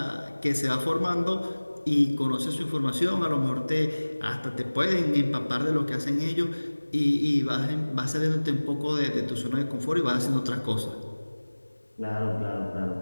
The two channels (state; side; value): inverted; both; correlation -1.00